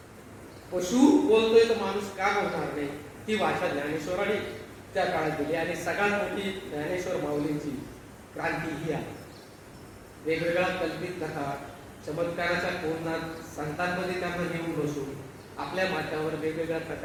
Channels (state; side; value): identical; both; correlation 1.00